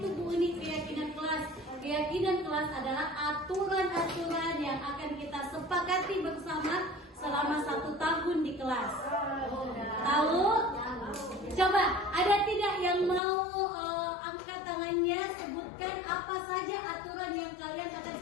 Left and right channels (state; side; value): drops out; right; at 13.2 s